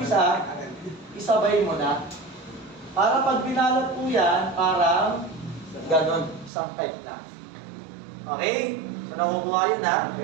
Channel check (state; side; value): drops out; left; at 6.5 s